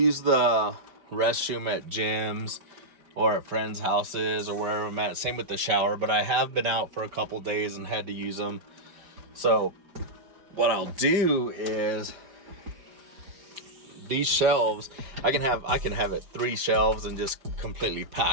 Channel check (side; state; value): left; late; 4.9 ms